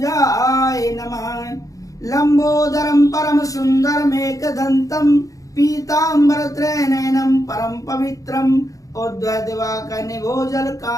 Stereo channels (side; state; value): right; late; 0.16 ms